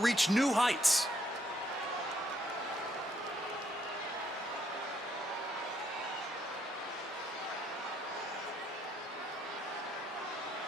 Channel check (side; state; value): both; normal; correlation 0.72